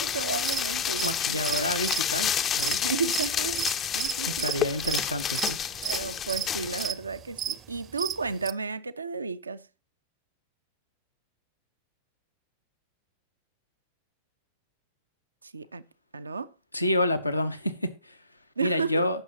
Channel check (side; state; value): both; normal; correlation -0.11